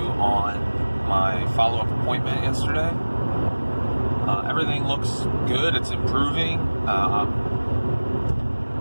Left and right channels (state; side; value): inverted; both; correlation -1.00